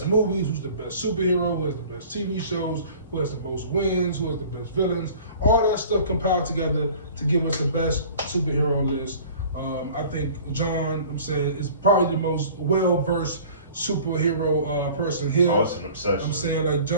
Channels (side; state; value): both; inverted; correlation -0.46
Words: movies, who's the best superhero, who has the best TV shows, who has the most wins, who has the best villains, all that stuff compiled together to give us the best superhero list. I think John, is probably the most well-versed superhero person here. Oh, it's an obsession. I'm saying